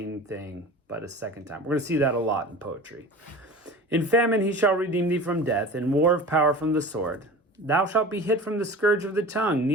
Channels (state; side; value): normal; both; correlation 0.37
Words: thing, but a second time. We're going to see that a lot in poetry. In famine he shall redeem thee from death, in war of power from the sword. Thou shalt be hid from the scourge of the tongue,